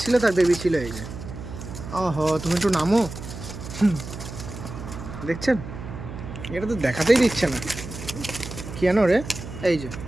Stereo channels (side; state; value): right; noise; hum, 10 dB below the sound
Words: ছিল তার বেবি ছিল এই যে। ওহো, তুমি একটু নামো। দেখছেন, এটা তো দেখাতেই দিচ্ছে না কেন রে। এই যে